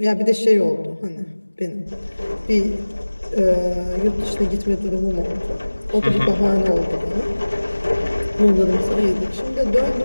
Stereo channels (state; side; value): inverted; both; correlation -1.00